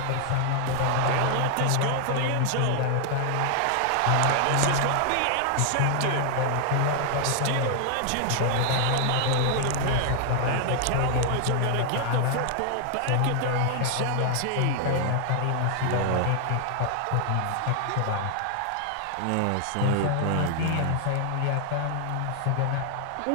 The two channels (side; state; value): both; different; correlation 0.00